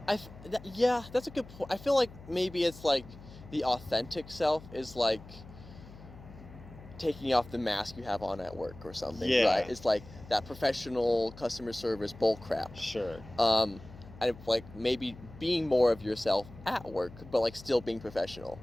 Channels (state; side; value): noise; left; hum, 18 dB below the sound